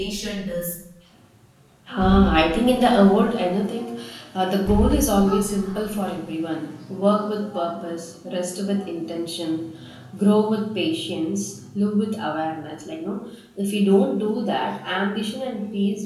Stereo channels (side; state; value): both; identical; correlation 1.00